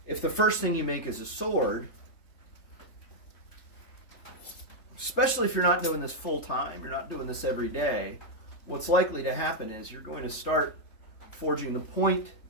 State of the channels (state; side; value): late; right; 3.4 ms